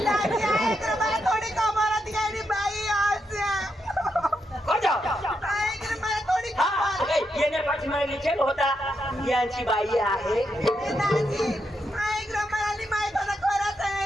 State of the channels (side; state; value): both; normal; correlation 0.82